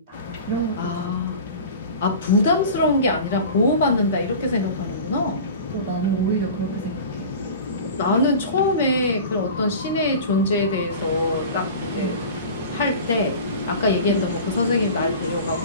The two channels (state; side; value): inverted; both; correlation -0.37